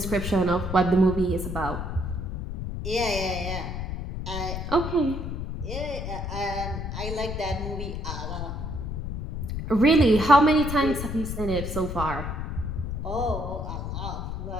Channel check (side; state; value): left; noise; rumble, 4 dB below the sound